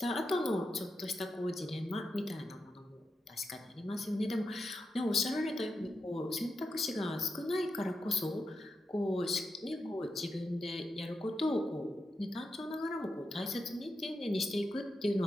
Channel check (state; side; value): normal; both; correlation 0.88